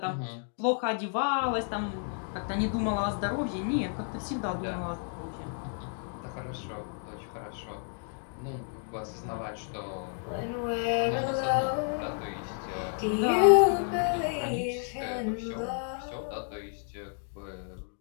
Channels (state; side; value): silent; right; 57 dB below the other